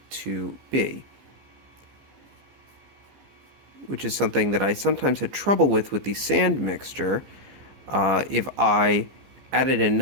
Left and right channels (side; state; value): left; late; 15 ms